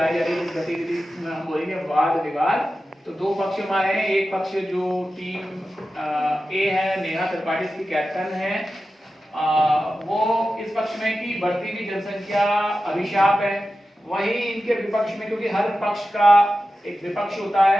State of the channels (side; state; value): both; normal; correlation 0.93